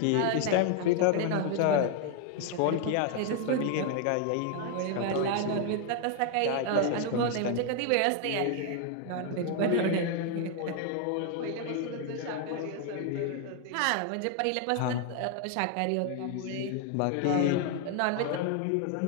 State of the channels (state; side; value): different; both; correlation 0.00